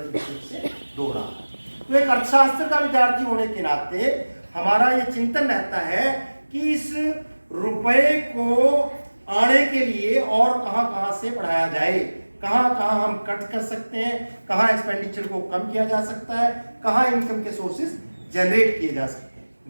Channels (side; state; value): both; inverted; correlation -1.00